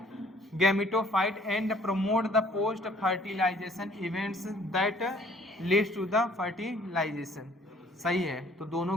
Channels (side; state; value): both; normal; correlation 0.58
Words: gametophyte and promote the post fertilization events that leads to the fertilization. सही है, तो